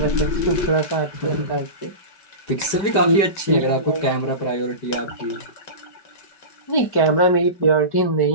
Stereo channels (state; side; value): late; right; 5.2 ms